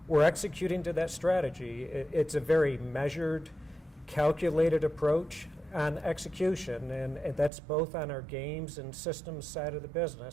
We're executing to that strategy. It's a very measured, calculated approach on execution, and that's both on our games and systems side of the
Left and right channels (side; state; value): left; drops out; at 7.5 s